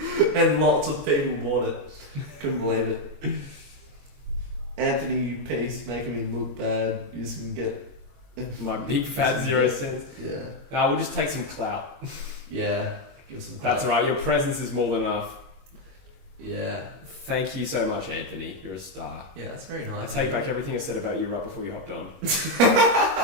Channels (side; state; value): left; late; 21 ms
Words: and lots of people bought it. Couldn't believe it. Anthony Peace making me look bad. You just can get my big fat 0 cents. Yeah. We'll just take some clout. Yeah. Give some That's right. Your presence is more than enough. Yeah. Thank you so much, Anthony. You're a star. Yeah, that's very nice. I take back everything I said about you right before you hopped on.